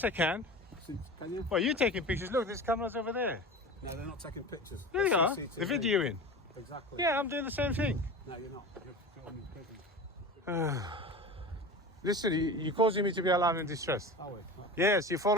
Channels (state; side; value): normal; both; correlation 0.32